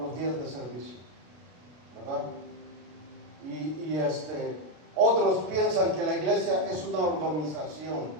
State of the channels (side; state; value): left; late; 33 ms